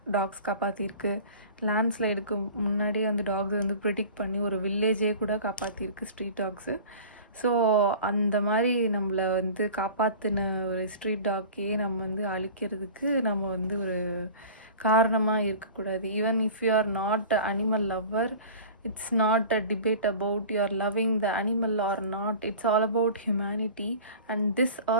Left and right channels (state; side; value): inverted; both; correlation -0.40